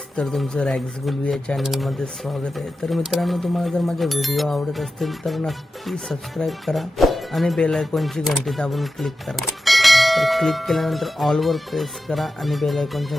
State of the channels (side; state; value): both; normal; correlation 0.92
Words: तर तुमचं रॅग्स गुलवी या चॅनलमध्ये स्वागत आहे। तर मित्रांनो, तुम्हाला जर माझे व्हिडिओ आवडत असतील तर नक्की सबस्क्राईब करा आणि बेल आयकॉनची घंटी दाबून क्लिक करा। तर क्लिक केल्यानंतर ऑलवर प्रेस करा आणि बेल